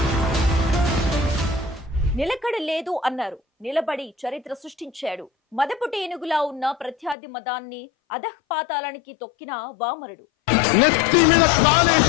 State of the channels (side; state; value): right; drops out; at 7.2 s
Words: నిలకడ లేదు అన్నారు, నిలబడి చరిత్ర సృష్టించాడు. మదపుటి ఏనుగులా ఉన్న ప్రత్యర్థి మదాన్ని అధఃపాతాళానికి తొక్కిన వామరుడు.